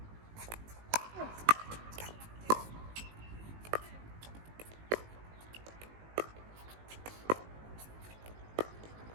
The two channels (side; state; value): left; late; 19 ms